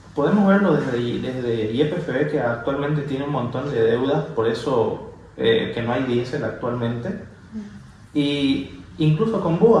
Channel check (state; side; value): identical; both; correlation 1.00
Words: Podemos verlo desde YPFB, que actualmente tiene un montón de deudas, por eso que no hay diésel actualmente. Y incluso con